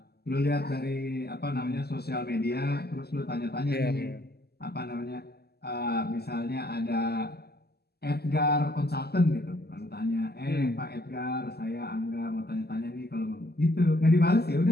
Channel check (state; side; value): late; right; 0.46 ms